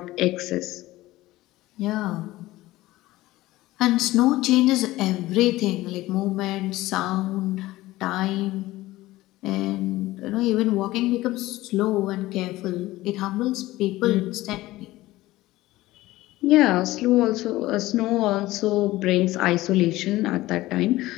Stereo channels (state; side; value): quieter; right; 17.5 dB